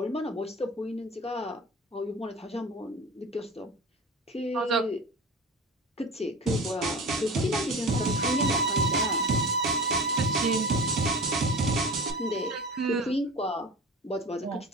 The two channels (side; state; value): both; normal; correlation 0.34